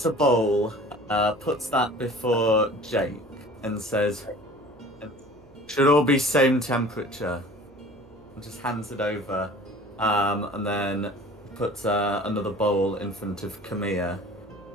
a bowl, puts that before Jake, and says, "Should all be same temperature." And just hands it over, and then puts another bowl in front of Camilla.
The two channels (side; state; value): right; noise; hum, 27 dB below the sound